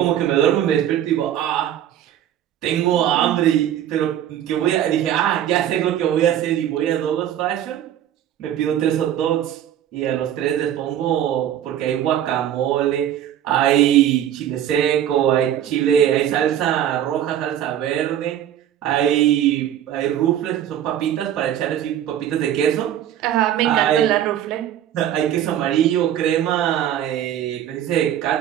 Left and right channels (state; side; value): quieter; left; 10.9 dB